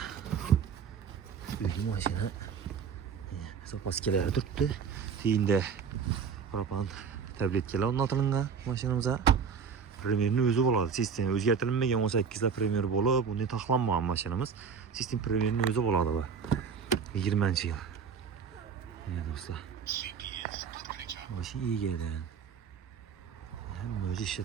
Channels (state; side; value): quieter; left; 6.4 dB